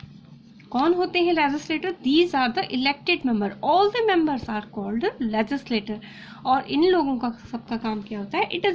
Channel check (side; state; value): both; identical; correlation 1.00